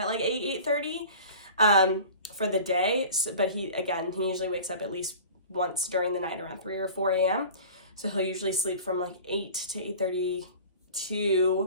like 8:30 for the day. So, but he usually wakes up at least once during the night around 3 or 4 a.m. So he'll usually sleep from like 8 to 8:30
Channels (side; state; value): both; inverted; correlation -0.40